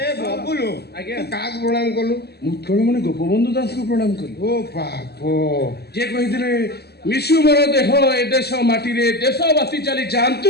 ଏ ବବୁଲୁ ଆଜ୍ଞା କାହାକୁ ପ୍ରଣାମ କଲୁ? ମୁତଳମଣି ଗୋପବନ୍ଧୁ ଦାସକୁ ପ୍ରଣାମ କଲୁ। ଓ ବାପ ଯିଏ କହିଥିଲେ ମିଶୁ ମୋର ଦେହ ଏ ଦେଶ ମାଟିରେ ଦେଶବାସୀ ଚାଲି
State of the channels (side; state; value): right; late; 0.47 ms